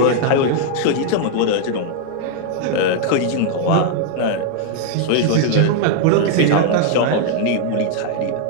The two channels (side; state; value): both; different; correlation 0.00